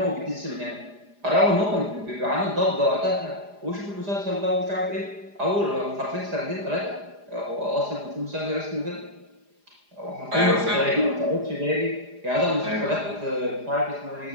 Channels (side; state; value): left; late; 4.9 ms